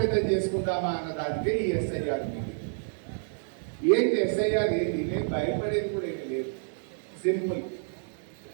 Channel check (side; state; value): left; silent; digital silence